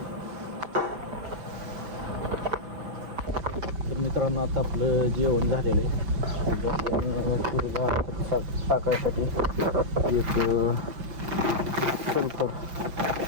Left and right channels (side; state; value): left; late; 5.9 ms